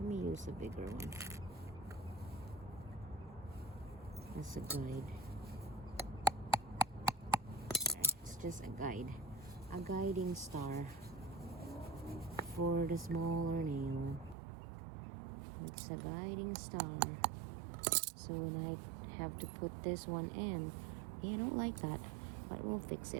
me use a bigger one. As a guide. It's just a guide. A guiding star for the smaller nail. It's a guiding star. So when I have to put this one in, I don't like that, but we'll fix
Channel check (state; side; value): drops out; left; at 14.4 s